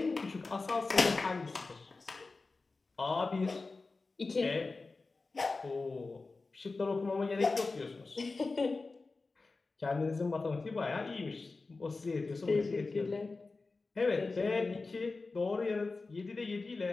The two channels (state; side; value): quieter; right; 3.8 dB